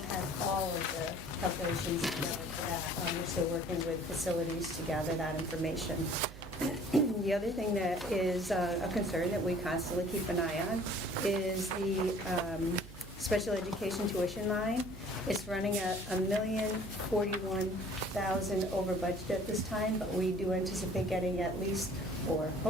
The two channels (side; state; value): right; noise; hum, 16 dB below the sound